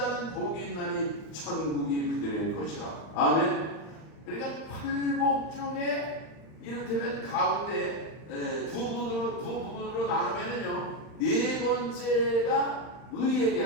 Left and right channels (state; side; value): late; right; 39 ms